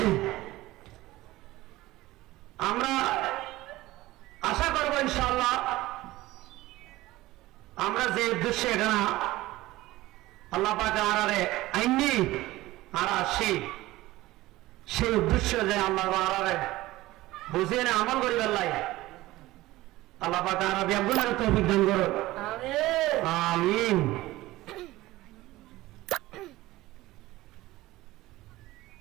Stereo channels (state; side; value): quieter; left; 17.8 dB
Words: আমরা আশা করব ইনশাআল্লাহ আমরা যে উদ্দেশ্যে এখানে আল্লাহ পাক আরারে আইনি আর আসি সেই উদ্দেশ্য যে আল্লাহ আরারে বুঝিয়ে না আমল করিবার লাই আল্লাহ পাক আরা ব্যাগুনের তৌফিক দান করুন। আমিন।